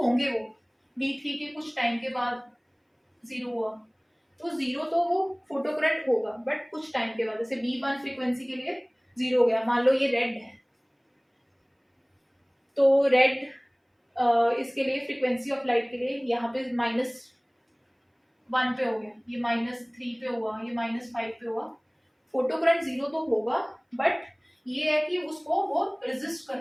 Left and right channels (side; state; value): both; identical; correlation 1.00